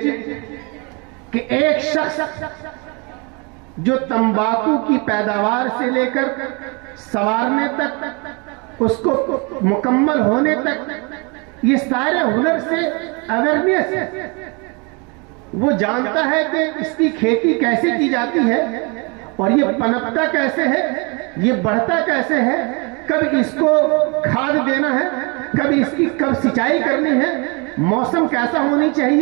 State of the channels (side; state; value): left; quieter; 31.0 dB